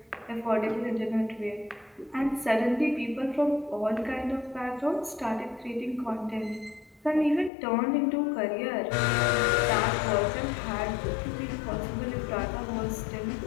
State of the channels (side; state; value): right; drops out; at 7.5 s